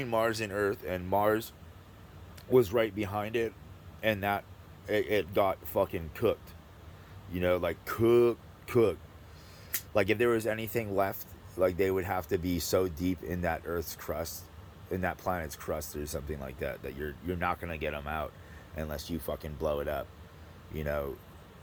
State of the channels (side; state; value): both; identical; correlation 1.00